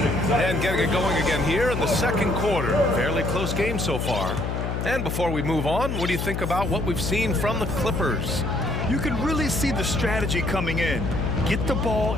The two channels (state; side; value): noise; left; hum, 2 dB below the sound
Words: And getting it going again here in the second quarter. Fairly close game so far. And before we move on, what do you think about what we've seen from the Clippers? You can really see the strategy coming in. Get the ball